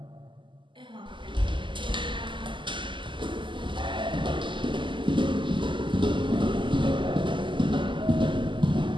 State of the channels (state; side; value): late; left; 0.24 ms